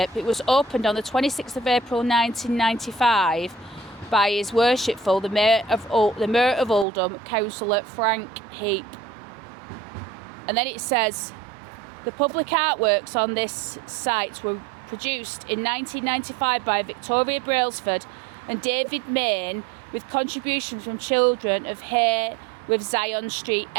It was opened on the 26th of April 1995 by His Worshipful the Mayor of Oldham, Councillor Frank Heap. And then it says, the public artworks on this site were produced in 1995 by Victoria Brailsford and David Main, with contributions from children of Hay with Zion Street,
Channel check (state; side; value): drops out; left; at 6.9 s